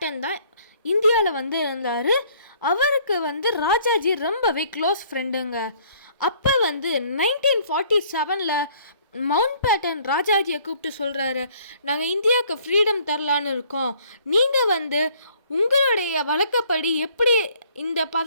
தான் இந்தியாவில் வந்து இருந்தார். அவருக்கு வந்து ராஜாஜி ரொம்பவே க்ளோஸ் ஃப்ரெண்டுங்க. அப்போ வந்து 1947 மவுண்ட் பேட்டன் ராஜாஜியை கூப்பிட்டு சொல்கிறாரு, நாங்கள் இந்தியாவுக்கு ஃப்ரீடம் தரலான்னு இருக்கோம், நீங்கள் வந்து உங்களுடைய வழக்கப்படி எப்படி இந்த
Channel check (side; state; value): both; inverted; correlation -0.60